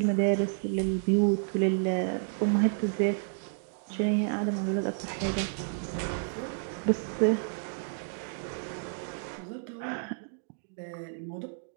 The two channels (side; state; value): left; silent; digital silence